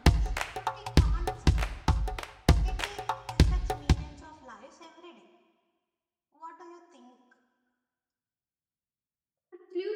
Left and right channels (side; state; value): both; identical; correlation 1.00